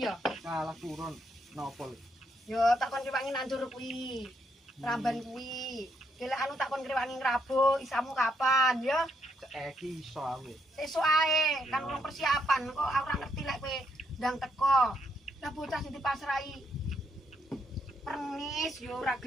ya? Salah turun napa lho? Yo tak kon grewangi nandur kuwi. Ramban kuwi. Gila anu tak kon grewangi ngrabuk, isamu kapan ya? Saiki iso aku. Sesuk ae, kan urung persiapan kok ora ngerti lek kowe ndang teko. Lah bocah sing dipasrahi pernis yo ora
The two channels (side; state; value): both; normal; correlation 0.76